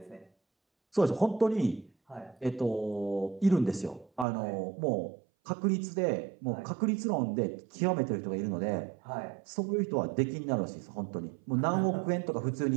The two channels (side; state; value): left; drops out; at 4.2 s